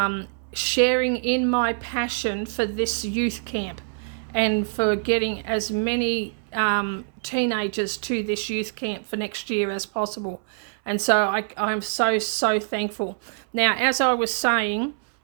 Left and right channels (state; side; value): silent; left; 61 dB below the other